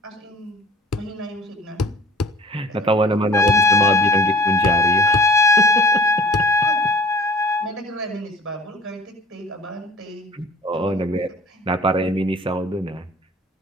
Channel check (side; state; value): both; normal; correlation 0.47